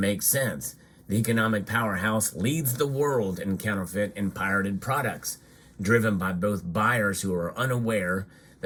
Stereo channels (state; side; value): identical; both; correlation 1.00